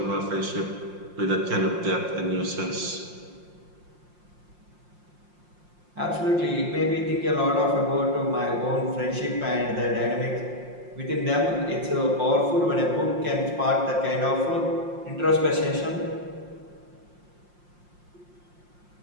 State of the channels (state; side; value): late; left; 5.7 ms